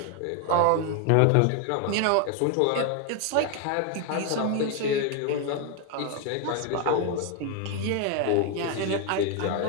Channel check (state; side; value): different; both; correlation 0.01